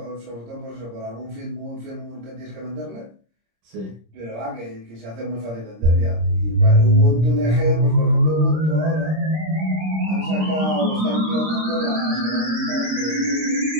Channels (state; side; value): late; left; 26 ms